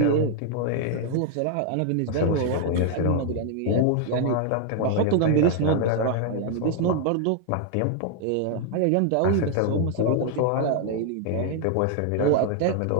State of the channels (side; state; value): both; different; correlation 0.00